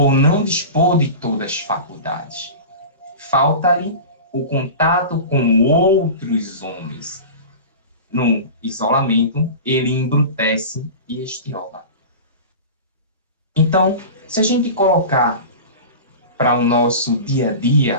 não dispor de todas as faculdades. Falta-lhe o contato com outros homens. No isolamento, ele embrutece e estiola. Então, se a gente colocar para o nosso dia a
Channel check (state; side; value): inverted; both; correlation -0.32